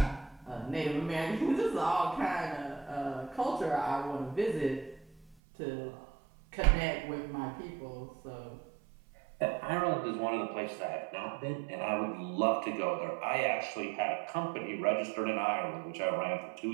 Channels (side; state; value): left; drops out; at 5.4 s